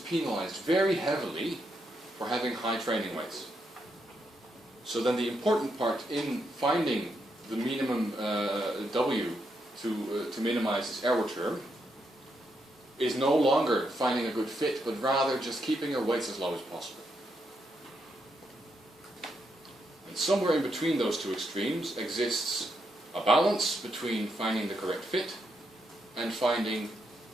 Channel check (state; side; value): normal; both; correlation 0.80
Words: very heavily for having high training weights. So then the important part in finding the minimum W to minimize this error term is no longer finding a good fit, but rather just keeping your weights as low as possible. And somewhere in between those two extremes exists a balance between finding the correct fit and finding